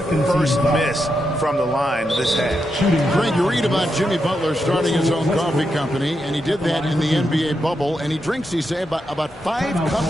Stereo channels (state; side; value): normal; both; correlation 0.85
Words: first miss from the line this half. Greg, you read about Jimmy Butler starting his own coffee company, and he did that in the NBA bubble, and he drinks, he say, about 5